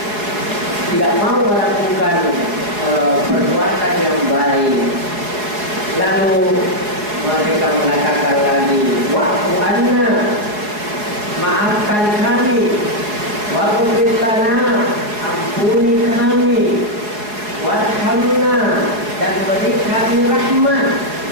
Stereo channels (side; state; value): left; late; 4.7 ms